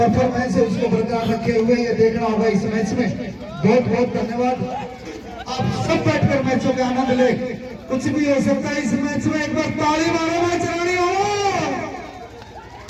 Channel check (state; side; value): identical; both; correlation 1.00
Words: है उसको बरकरार रखे हुए ये देखना होगा इस मैच में। बहुत बहुत धन्यवाद। आप सब बैठकर मैचों के आनंद ले, कुछ भी हो सकता है इस मैच में। एक बार ताली मारो मैच रानी हो।